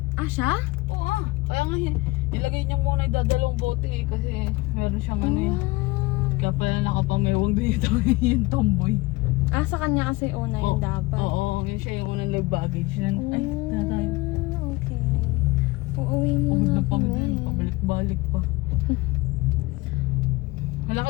Ah, siya? Oo ah. Kaya nga nilagay niya muna yung dadalawang bote eh. Kasi meron siyang ano eh. Kaya pala nakapamewang dito yung tomboy. Ah, sa kanya kasi una yun dapat. Oo, yun siya yung unang nag-baggage yan. Ay, tatay. Okay. Uuwi muna kami. Pabalik-balik pa. Malaki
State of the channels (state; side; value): quieter; right; 21.7 dB